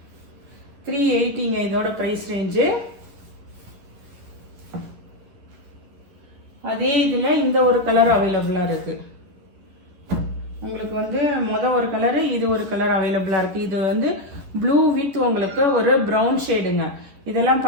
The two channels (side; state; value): left; late; 10 ms